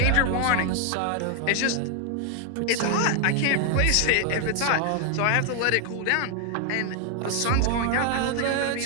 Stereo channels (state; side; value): different; both; correlation 0.00